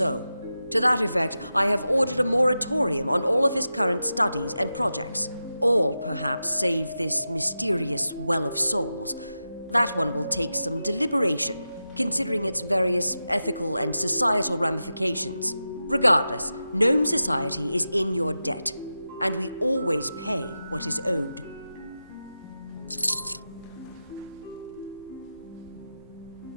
To that effect, I have ordered a moratorium on all of his current studies and projects. All, perhaps, save this mysterious Well of Souls. That one will take some deliberation, considering its various ethical and societal ramifications. Regardless, Gnome Society is in your debt, and we always pay what is owed.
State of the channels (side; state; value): both; inverted; correlation -0.91